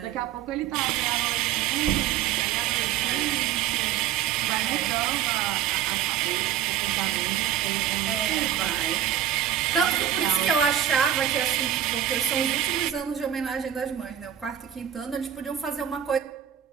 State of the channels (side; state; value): left; quieter; 10.3 dB